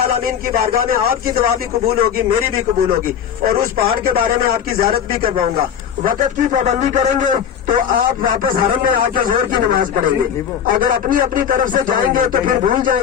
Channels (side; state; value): right; quieter; 8.6 dB